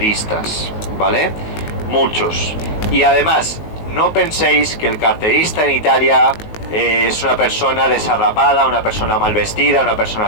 ¿vale? Muchos. Y además, no penséis que el carterista en Italia es una persona desarrapada, una persona mal vestida, una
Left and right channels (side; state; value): right; late; 19 ms